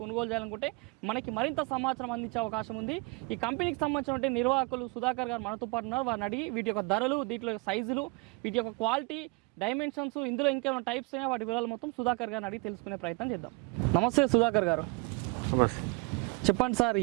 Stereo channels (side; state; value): left; quieter; 27.9 dB